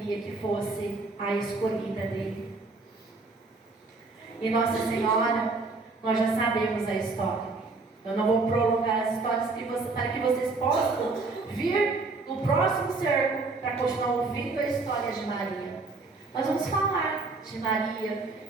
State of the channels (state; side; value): quieter; left; 3.7 dB